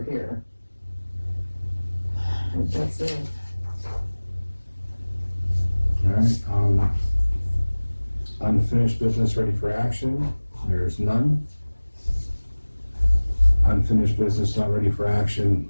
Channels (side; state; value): both; inverted; correlation -1.00